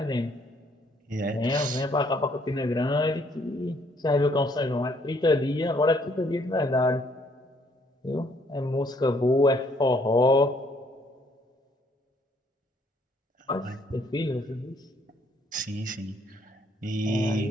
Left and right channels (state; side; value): normal; both; correlation 0.66